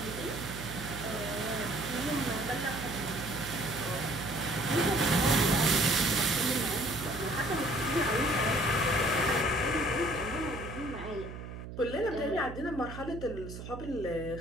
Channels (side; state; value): right; noise; hum, 10 dB below the sound